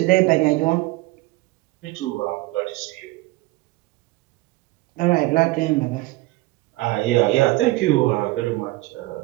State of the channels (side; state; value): left; quieter; 20.3 dB